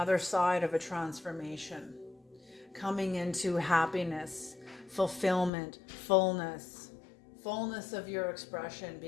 side of a transformation. Coming into happiness, fulfillment, fullness of your expression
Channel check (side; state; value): right; drops out; at 5.5 s